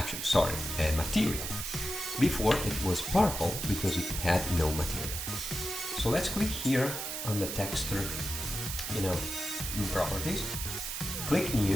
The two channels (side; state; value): right; noise; hiss, 4 dB below the sound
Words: material. Before it was purple because it had no material. So let's click here on the texture, you know, properties, click